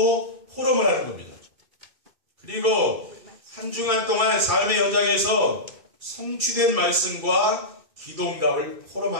포럼을 하는 겁니다. 그리고 한 주간 동안 삶의 현장에서 성취된 말씀과 기도응답을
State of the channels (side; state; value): left; late; 2.7 ms